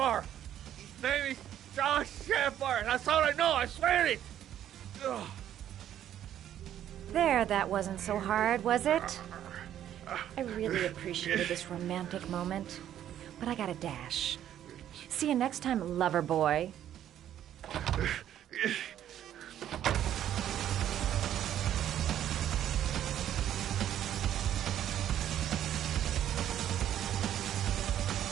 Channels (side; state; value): left; quieter; 11.0 dB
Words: His name is John Shepard. That's all I know. I swear it. Ugh. There, that wasn't so hard, was it? I really appreciated this romantic moment, but I gotta dash. See you next time, lover boy.